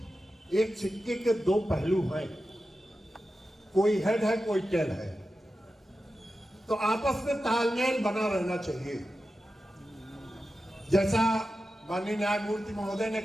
एक सिक्के के दो पहलू हैं। कोई हेड है, कोई टेल है। तो आपस में तालमेल बना रहना चाहिए। जैसा माननीय न्यायमूर्ति महोदय ने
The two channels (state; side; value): normal; both; correlation 0.92